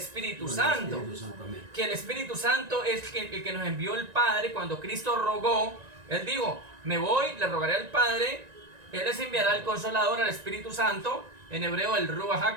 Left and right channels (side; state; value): left; late; 1.9 ms